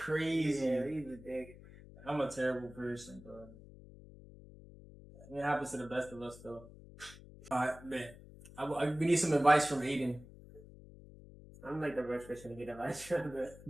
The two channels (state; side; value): noise; left; hum, 18 dB below the sound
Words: Yeah, he's a dick. I'm a terrible person, bro. It happens to the best of us, though. Alright, man. We need some advice from Adan. I'm like the worst person to get advice from, but